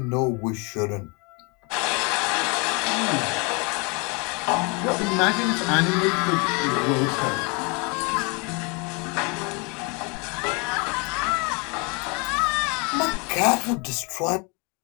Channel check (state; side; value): quieter; right; 31.8 dB